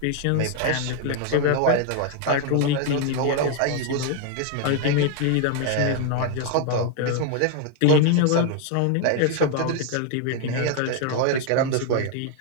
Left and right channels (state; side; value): different; both; correlation 0.01